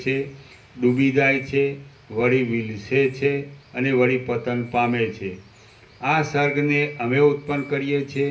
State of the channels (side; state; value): both; identical; correlation 1.00